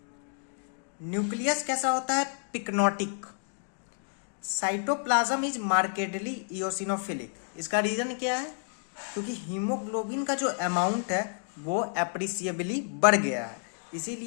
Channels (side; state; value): right; silent; digital silence